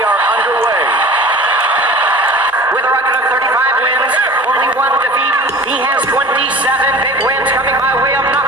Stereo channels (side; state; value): both; normal; correlation 0.40